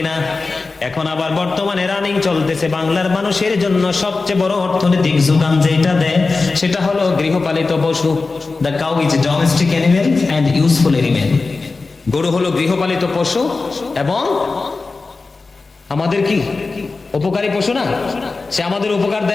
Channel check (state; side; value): quieter; right; 3.9 dB